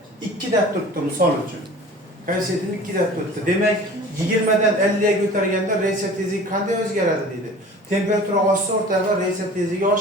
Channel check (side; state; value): both; normal; correlation 0.43